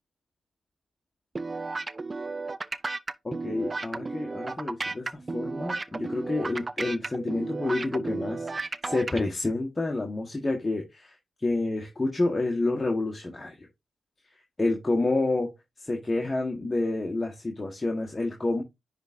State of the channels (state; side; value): normal; both; correlation 0.95